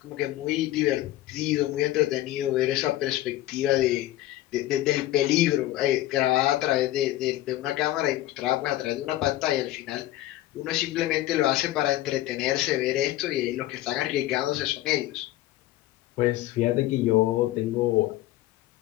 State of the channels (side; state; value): right; quieter; 15.3 dB